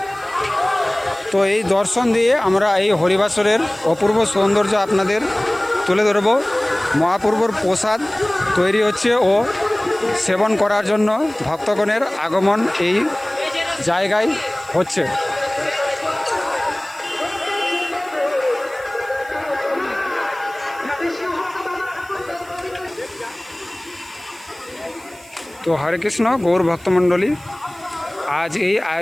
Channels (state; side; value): noise; right; hiss, 24 dB below the sound